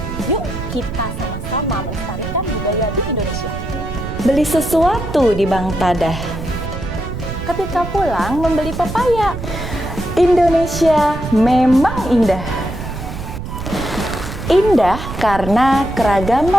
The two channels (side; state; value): right; noise; rumble, 7 dB below the sound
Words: Yuk kita sama-sama melestarikan budaya di Indonesia. Beli sesuatu di Bank Tadah. Ketika pulang membeli pepaya. Indonesia memang indah. Indah karena